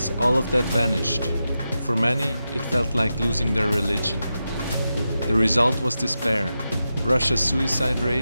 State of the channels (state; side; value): inverted; both; correlation -0.90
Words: all of that vanished. For many, it felt like losing their religion. The result was despair. Russia's suicide